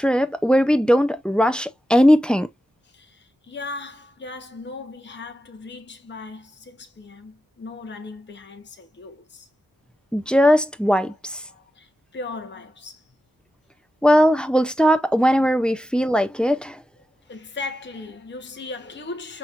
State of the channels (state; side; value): normal; both; correlation 0.91